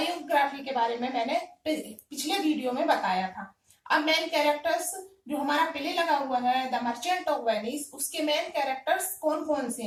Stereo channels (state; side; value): identical; both; correlation 1.00